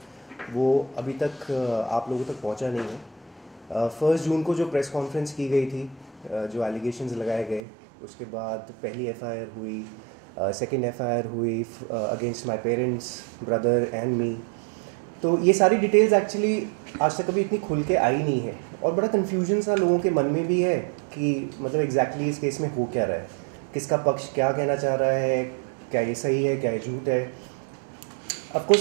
वो अभी तक आप लोगों तक पहुंचा नहीं है। 1 जून को जो प्रेस कॉन्फ्रेंस की गई थी, जो एलिगेशंस लगाए गए, उसके बाद पहली एफआईआर हुई, सेकंड एफआईआर हुई against my parents, brother and me. तो ये सारी डिटेल्स एक्चुअली आज तक कभी इतनी खुल के आई नहीं है और बड़ा कन्फ्यूजन सा लोगों के मन में भी है कि मतलब एग्जैक्टली इस केस में हो क्या रहा है, किसका पक्ष क्या कहना चाह रहा है, क्या ये सही है, क्या ये झूठ है। ऑफ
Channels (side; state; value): left; drops out; at 7.6 s